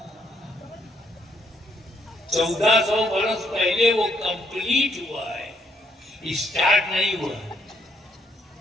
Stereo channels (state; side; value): normal; both; correlation 0.72